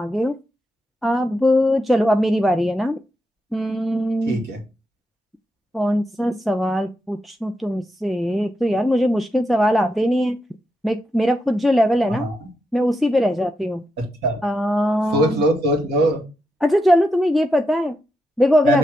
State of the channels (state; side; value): normal; both; correlation 0.85